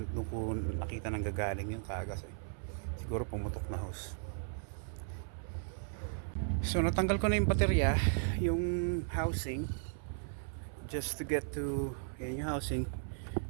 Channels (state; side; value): silent; left; 54 dB below the other